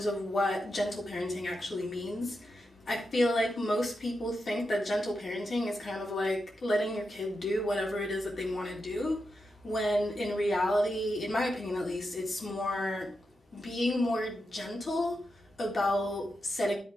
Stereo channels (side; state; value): both; normal; correlation 0.87